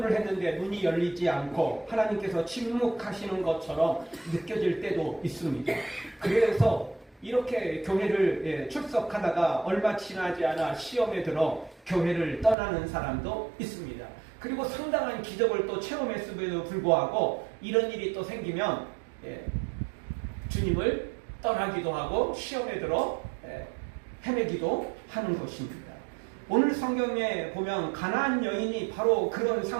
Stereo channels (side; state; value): left; drops out; at 12.6 s